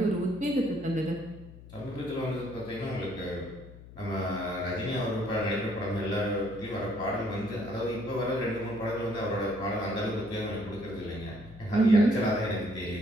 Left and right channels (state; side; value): noise; left; hum, 17 dB below the sound